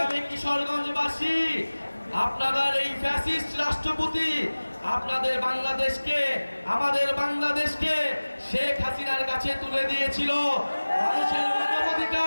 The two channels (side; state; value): both; inverted; correlation -1.00